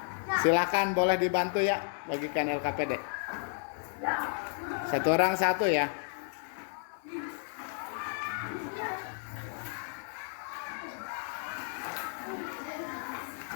Silakan, boleh dibantu ya bagikan LKPD. Satu orang satu ya.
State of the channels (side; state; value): right; silent; 56 dB below the other